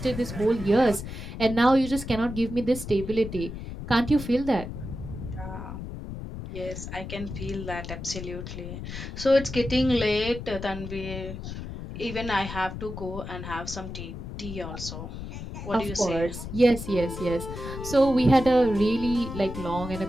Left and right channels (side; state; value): left; noise; rumble, 9 dB below the sound